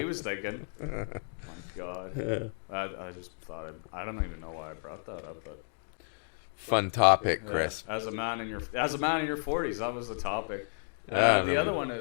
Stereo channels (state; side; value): silent; right; 56 dB below the other